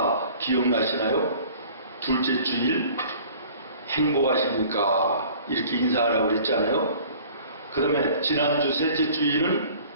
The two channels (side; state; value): both; inverted; correlation -0.48